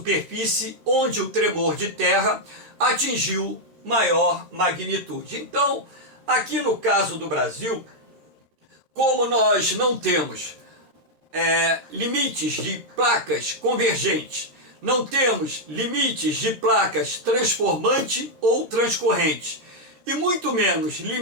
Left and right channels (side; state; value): left; late; 13 ms